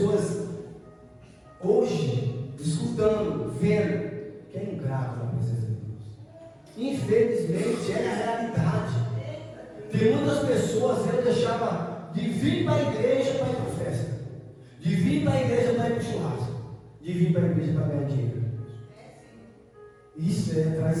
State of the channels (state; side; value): identical; both; correlation 1.00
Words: hoje escutando, vendo, que é ingrato na presença de Deus. Infelizmente é a realidade. Tem muitas pessoas, eu deixava de vir para a igreja para ir para a festa, de vir para a igreja para ir para o churrasco, de vir para a igreja para ganhar dinheiro. Isso é